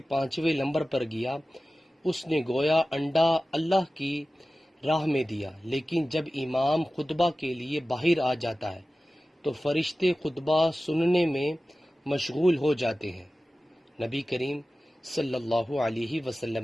پانچویں نمبر پر گیا اس نے گویا انڈا اللہ کی راہ میں دیا۔ لیکن جب امام خطبہ کے لیے باہر آ جاتا ہے تو فرشتے خطبہ سننے میں مشغول ہو جاتے ہیں۔ نبی کریم صلی اللہ علیہ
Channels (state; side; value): normal; both; correlation 0.96